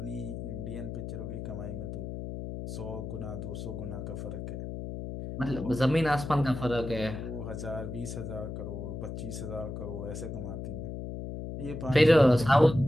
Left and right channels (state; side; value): noise; left; hum, 7 dB below the sound